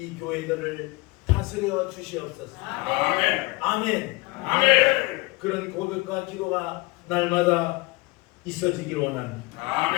교회들을 다스려 주시옵소서. 아멘. 아멘. 아멘. 그런 고백과 기도가 날마다 있어지기를 원합니다.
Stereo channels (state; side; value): quieter; right; 23.6 dB